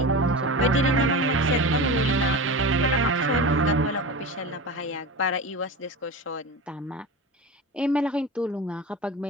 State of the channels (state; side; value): normal; both; correlation 0.27